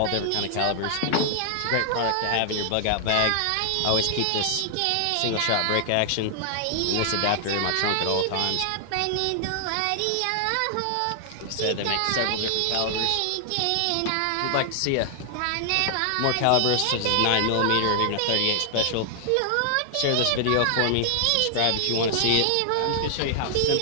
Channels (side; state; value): both; different; correlation 0.00